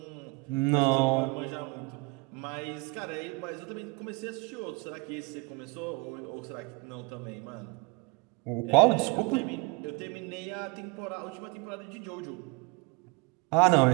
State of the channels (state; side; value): quieter; left; 26.7 dB